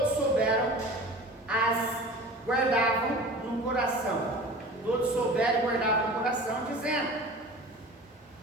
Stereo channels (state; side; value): normal; both; correlation 0.38